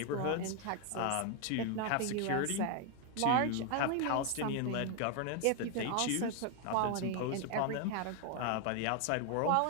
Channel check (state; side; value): different; both; correlation 0.01